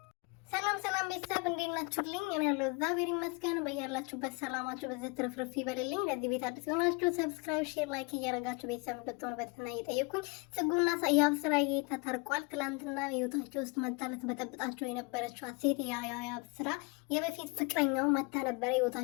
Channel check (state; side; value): quieter; right; 29.8 dB